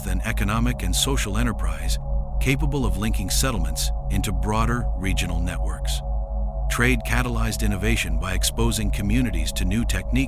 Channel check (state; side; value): identical; both; correlation 1.00